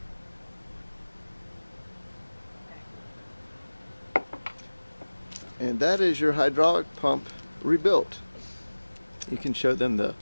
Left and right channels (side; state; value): both; inverted; correlation -1.00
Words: And that is your hydraulic pump rebuilt. You can show them the